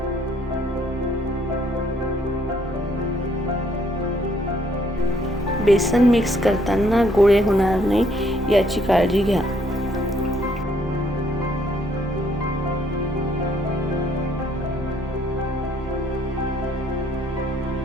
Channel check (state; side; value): normal; both; correlation 0.66